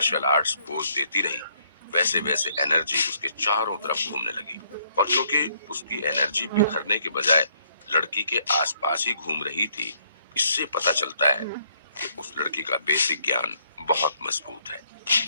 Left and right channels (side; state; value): both; inverted; correlation -0.68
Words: आर्ट्स पोज देती रही वैसे वैसे एनर्जी उसके चारों तरफ घूमने लगी। और क्योंकि उसकी एनर्जी बिखरने के बजाय लड़की के आसपास ही घूम रही थी, इससे पता चलता है कि उस लड़की का बेसिक ज्ञान बहुत मजबूत है।